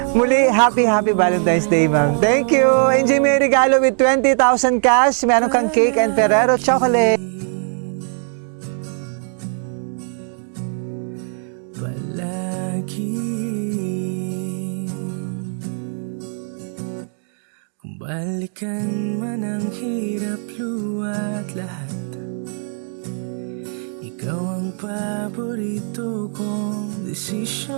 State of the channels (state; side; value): silent; left; digital silence